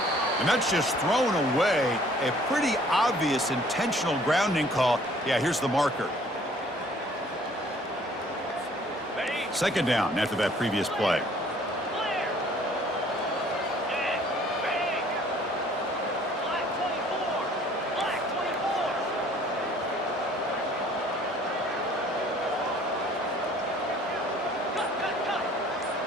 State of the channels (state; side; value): normal; both; correlation 0.56